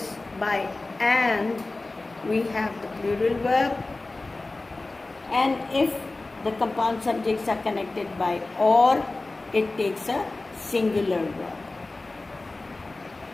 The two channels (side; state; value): right; quieter; 3.2 dB